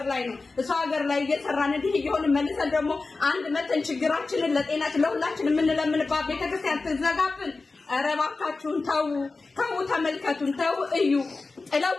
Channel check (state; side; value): quieter; right; 3.8 dB